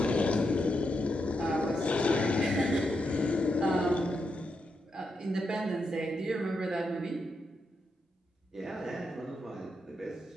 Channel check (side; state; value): both; normal; correlation 0.83